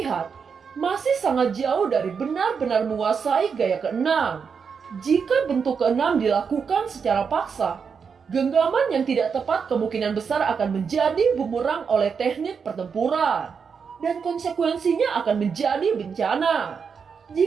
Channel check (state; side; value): quieter; left; 6.1 dB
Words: masih sangat jauh dari benar-benar menguasai gaya ke-6. Jika bentuk ke-6 dilakukan secara paksa, genggaman yang tidak tepat kemungkinan besar akan menjadi bumerang oleh teknik pertempuran. Dan konsekuensinya akan menjadi bencana.